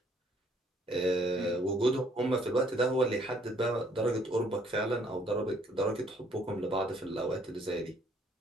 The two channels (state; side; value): normal; both; correlation 0.64